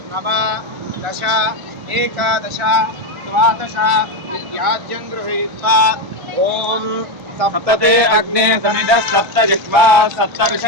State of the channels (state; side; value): late; left; 1.3 ms